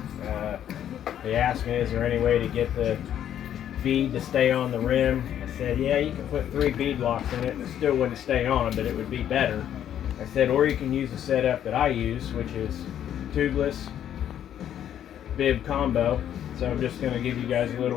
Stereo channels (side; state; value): right; quieter; 10.3 dB